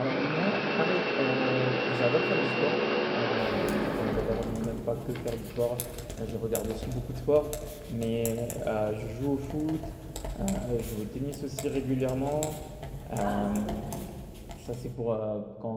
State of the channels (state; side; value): identical; both; correlation 1.00